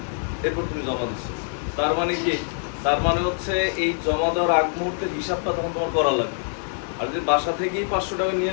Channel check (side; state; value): right; silent; 62 dB below the other